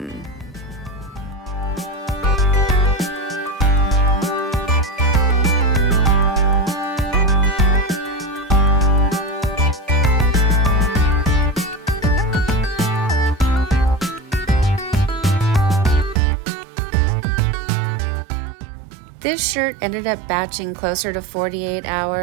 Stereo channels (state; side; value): drops out; left; at 16.2 s